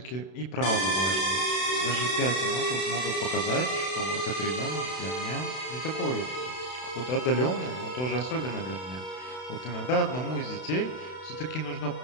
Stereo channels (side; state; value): right; late; 32 ms